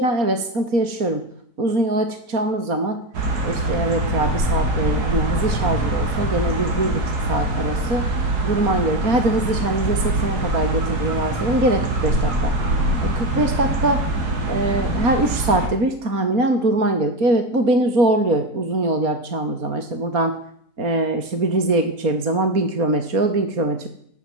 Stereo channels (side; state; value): left; late; 4.3 ms